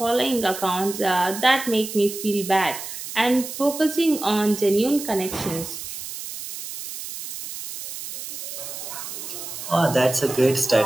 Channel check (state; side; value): noise; right; hiss, 9 dB below the sound